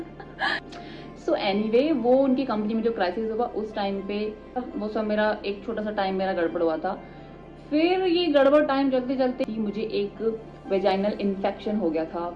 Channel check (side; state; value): both; identical; correlation 1.00